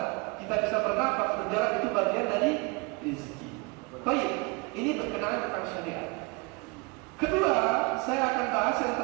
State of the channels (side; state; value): left; quieter; 29.4 dB